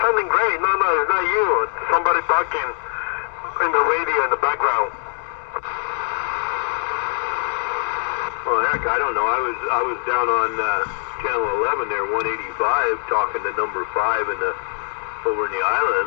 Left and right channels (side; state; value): right; silent; digital silence